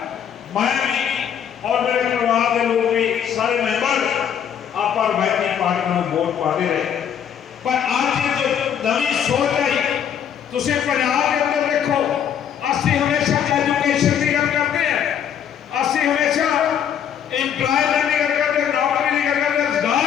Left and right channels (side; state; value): right; quieter; 8.8 dB